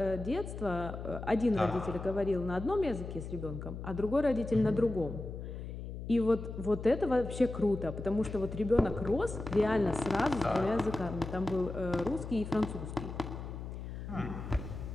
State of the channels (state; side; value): noise; left; hum, 8 dB below the sound